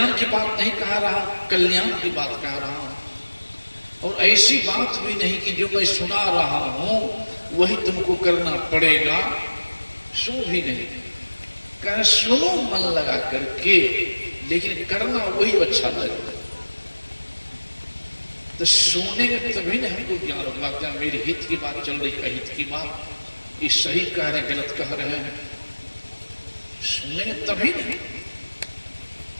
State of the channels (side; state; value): both; inverted; correlation -1.00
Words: की बात नहीं कह रहा, कल्याण की बात कह रहा हूं। और ऐसी बात भी नहीं कि जो मैं सुना रहा हूं वही तुमको करना पड़ेगा, सो भी नहीं। कह सुनो मन लगा करके, लेकिन करना वही अच्छा लगेगा। तो सुनेंगे तभी ना हमको ज्ञान होगा। क्या मेरे हित की बात चल रही, अहित की बात, ये सही कह रहे गलत कह रहे हैं, सुनेंगे तभी नहीं।